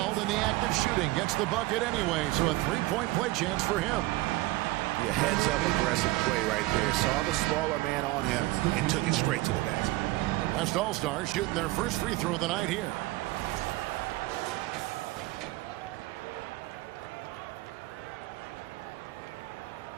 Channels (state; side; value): quieter; left; 19.7 dB